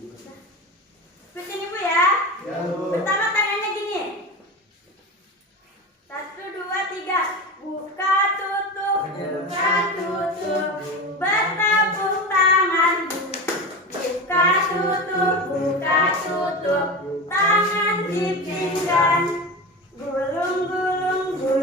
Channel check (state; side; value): normal; both; correlation 0.25